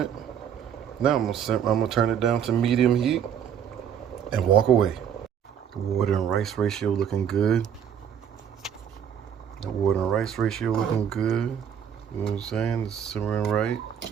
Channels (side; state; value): left; quieter; 8.6 dB